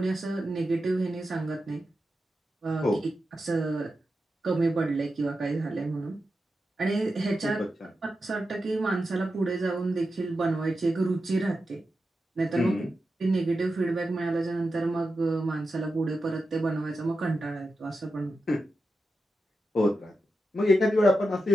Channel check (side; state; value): both; normal; correlation 0.90